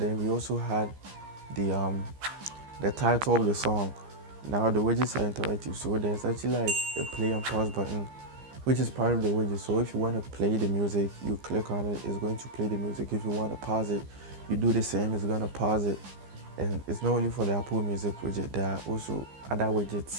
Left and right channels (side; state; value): left; late; 15 ms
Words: we also had the title of the song. Now the widgets are interactive, so there's actually like a play and pause button, which is part of the widget. So if you want to play the music, you click on it, it's going to play the music. If you want to pause it, you do the same, it's going to pause it. And it's not only for the Apple Music widget, there are also other